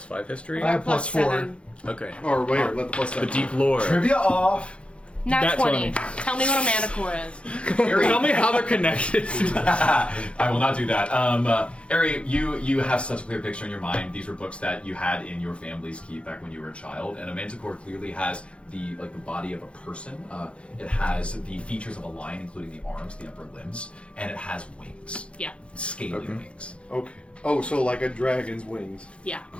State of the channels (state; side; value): late; right; 0.059 ms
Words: history. I have Plus +4. 7. Okay. Or wait, let the plus The 7. deep lore. Trivia off. Nat Nat 20. 20. Tell me what a manticore is. Tell me how they're connected. I will not do that. Ari, you have such a clear picture in your mind. These were books that you had in your family's keep back when you were a child, and a manticore clearly has the body of a person. It has the features of a lion, including the arms, the upper limbs, and it has wings, Yeah. scaly wings. Okay. Oh, so like a dragon's wings. Yeah.